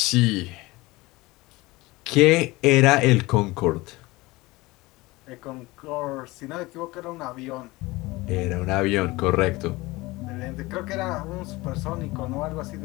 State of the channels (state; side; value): quieter; right; 21.2 dB